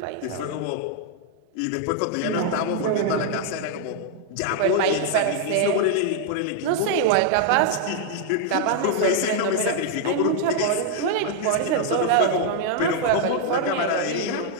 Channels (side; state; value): both; different; correlation -0.01